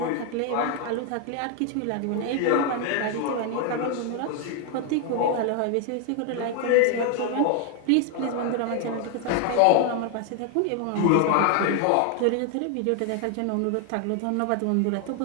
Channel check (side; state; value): both; different; correlation 0.01